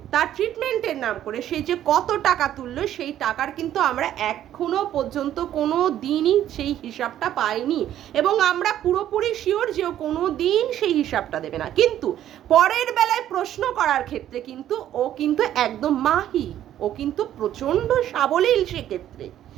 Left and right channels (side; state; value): left; quieter; 11.7 dB